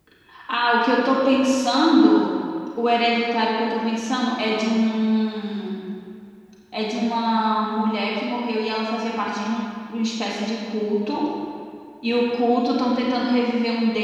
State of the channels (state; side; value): identical; both; correlation 1.00